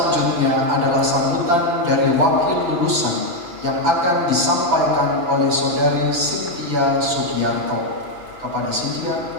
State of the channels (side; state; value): left; late; 5.9 ms